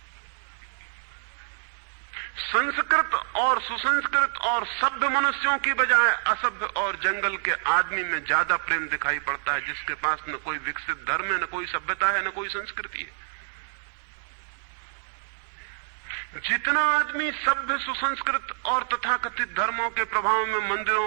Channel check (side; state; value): left; silent; 57 dB below the other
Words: संस्कृत और सुसंस्कृत और सभ्य मनुष्यों की बजाय असभ्य और जंगल के आदमी में ज्यादा प्रेम दिखाई पड़ता है, जिसके पास न कोई विकसित धर्म है, न कोई सभ्यता है, न कोई संस्कृति है। जितना आदमी सभ्य, सुसंस्कृत और तथाकथित धर्मों के प्रभाव में मंदिरों